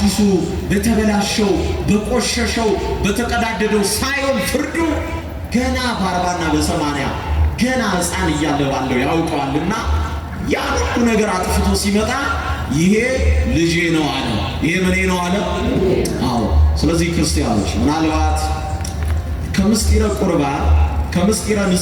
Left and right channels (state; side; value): identical; both; correlation 1.00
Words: በተበላሸው በቆሸሸው በተቀዳደደው ሳይሆን ፍርዱ ገና በ40 እና በ80 ገና ሕፃን እያለ ባለው ያውቀዋልና ያ ሁሉ ነገር አጥፍቶ ሲመጣ ይሄ ልጄ ነው አለ። ይሄ ምኔ ነው አለ። አዎ። ስለዚህ ክርስቲያኖች ምናልባት ከምስጢረ ቁርባን ከምስጢረ